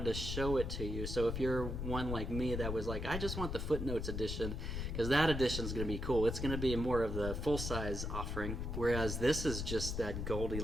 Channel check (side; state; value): left; noise; rumble, 3 dB below the sound